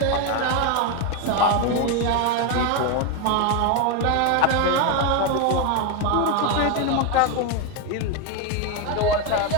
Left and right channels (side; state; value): both; different; correlation 0.02